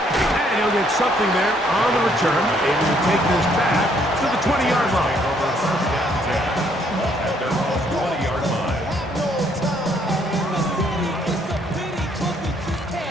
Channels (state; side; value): normal; both; correlation 0.67